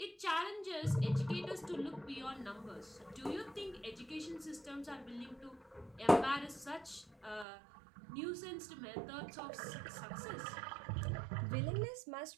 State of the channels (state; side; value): drops out; left; at 7.5 s